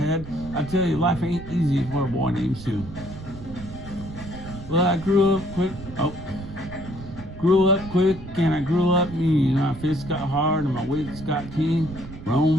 I tell you, life ain't easy for a boy named Sue. Well, I grew up quick and I grew up mean. My fists got hard and my wits got keen.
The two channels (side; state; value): right; noise; rumble, 13 dB below the sound